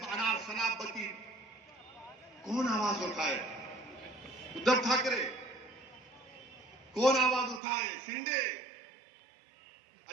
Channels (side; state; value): left; drops out; at 7.6 s